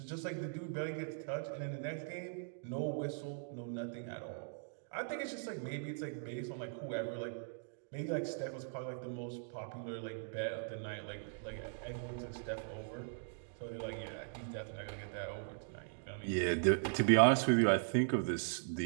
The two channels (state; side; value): silent; left; digital silence